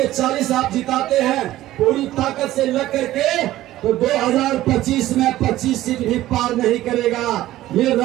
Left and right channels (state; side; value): quieter; left; 15.0 dB